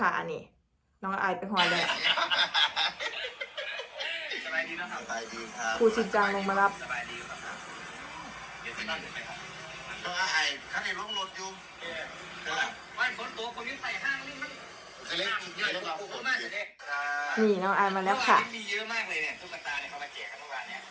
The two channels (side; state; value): both; identical; correlation 1.00